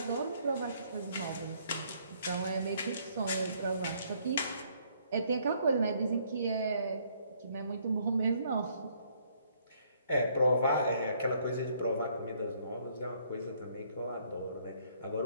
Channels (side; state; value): both; inverted; correlation -0.66